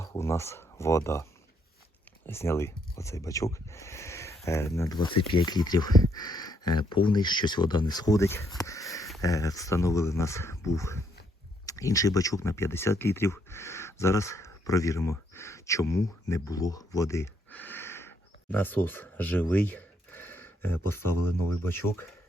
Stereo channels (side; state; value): both; normal; correlation 0.73